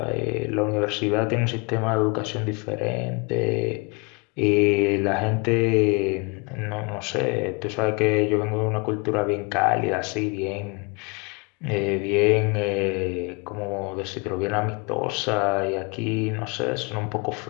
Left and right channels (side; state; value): right; quieter; 30.4 dB